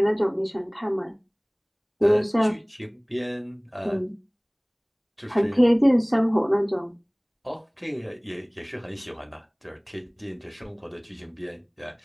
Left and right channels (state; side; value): identical; both; correlation 1.00